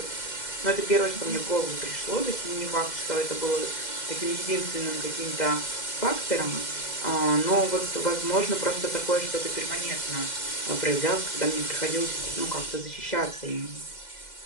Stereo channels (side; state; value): right; late; 2.0 ms